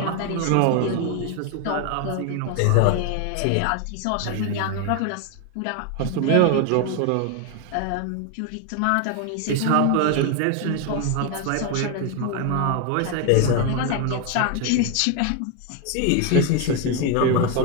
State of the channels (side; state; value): both; different; correlation 0.01